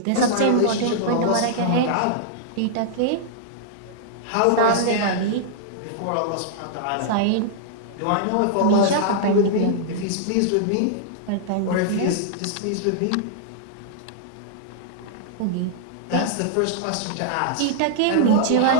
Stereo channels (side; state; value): both; different; correlation -0.01